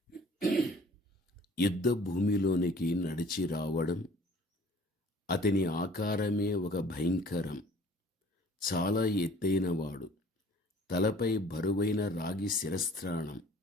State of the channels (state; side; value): normal; both; correlation 0.52